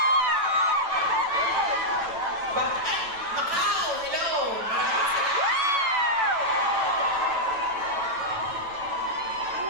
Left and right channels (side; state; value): left; late; 9.0 ms